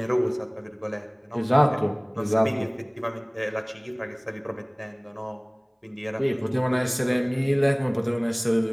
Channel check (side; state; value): both; identical; correlation 1.00